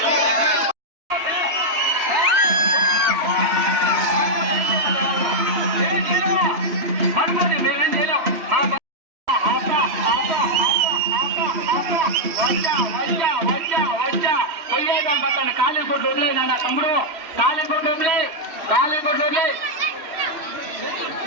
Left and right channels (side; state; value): left; late; 3.1 ms